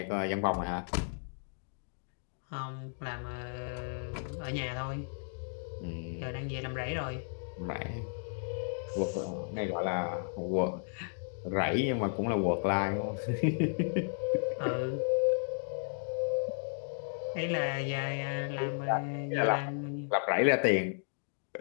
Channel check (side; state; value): right; silent; digital silence